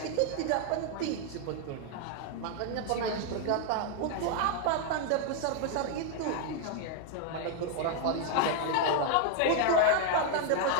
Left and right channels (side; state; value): both; different; correlation 0.00